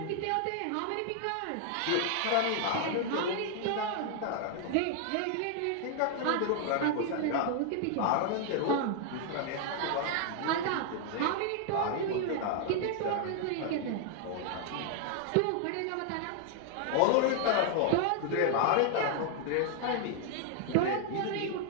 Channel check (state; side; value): different; both; correlation 0.00